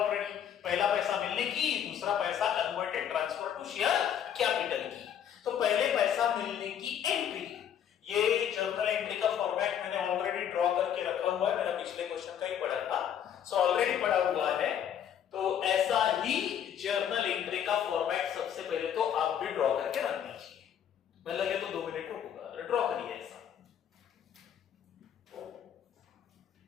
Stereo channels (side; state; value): right; quieter; 9.3 dB